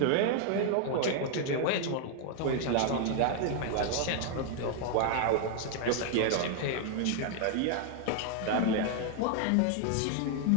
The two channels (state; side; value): different; both; correlation 0.00